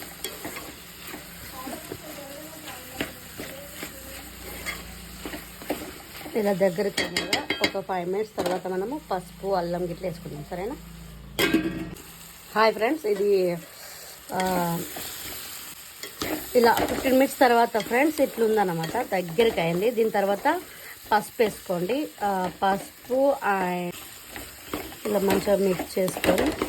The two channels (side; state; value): both; identical; correlation 1.00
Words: ఇలా దగ్గరికి అయినగా ఒక 5 minutes తర్వాత మనము పసుపు, అల్లం గిట్ల వేసుకుందాం. సరేనా? హాయ్ ఫ్రెండ్స్, ఇది ఇలా 15 minutes తర్వాత ఫ్రెండ్స్ ఇట్లుందన్నమాట, దగ్గరికి అయింది. దీని తర్వాత పసుపు వేసుకోండి. పసుపు ఇలా మంచిగా మిక్స్ చేసుకొని